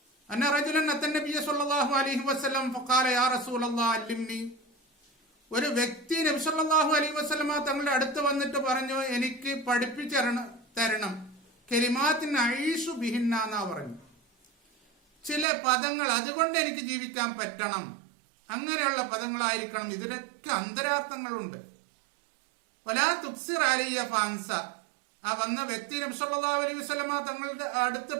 അന്ന റജുലൻ അത്തൻ നബിയ സല്ലല്ലാഹു അലൈഹി വസല്ലം ഫഖാല യാ റസൂലല്ലാഹ് അല്ലിംനി, ഒരു വ്യക്തി നബി സല്ലല്ലാഹു അലൈഹി വസല്ലമ തങ്ങളുടെ അടുത്ത് വന്നിട്ട് പറഞ്ഞു, എനിക്ക് പഠിപ്പിച്ചു തരണം, കലിമാത്തിൻ അഈശു ബിഹിന്ന എന്നാ പറഞ്ഞു. ചില പദങ്ങൾ അതുകൊണ്ട് എനിക്ക് ജീവിക്കാൻ പറ്റണം. അങ്ങനെയുള്ള പദങ്ങളായിരിക്കണം. ഇതിനൊക്കെ അന്തരാർത്ഥങ്ങളുണ്ട്. വലാ തുക്സിർ അലിയ ഫാൻസ, ആ വന്ന വ്യക്തി നബി സല്ലല്ലാഹു അലൈഹി വസല്ലമ തങ്ങളുടെ അടുത്ത്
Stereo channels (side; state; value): left; drops out; at 15.5 s